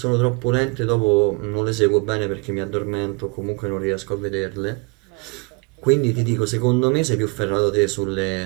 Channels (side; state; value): left; quieter; 29.7 dB